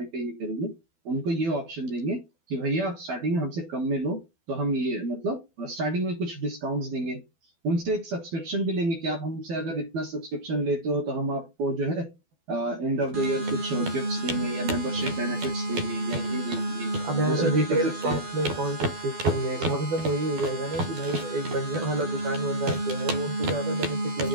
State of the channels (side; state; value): left; late; 12 ms